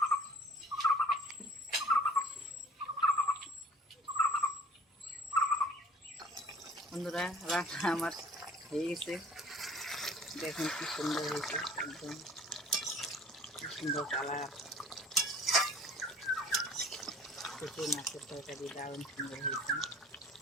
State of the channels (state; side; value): normal; both; correlation 0.49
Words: বন্ধুরা রান্না আমার হয়ে গেছে, দেখুন কি সুন্দর হয়েছে, একদম কি সুন্দর কালার। কচু মাছের তরকারি দারুণ সুন্দর হয়েছে।